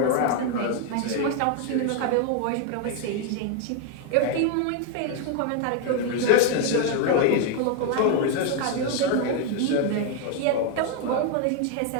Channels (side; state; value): both; different; correlation 0.01